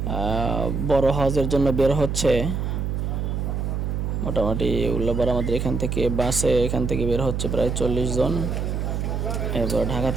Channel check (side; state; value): right; noise; hum, 1 dB below the sound